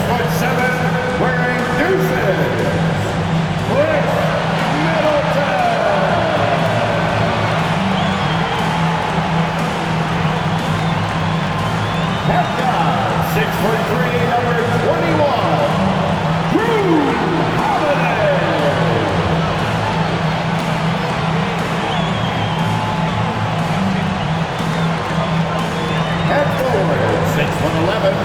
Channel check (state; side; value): identical; both; correlation 1.00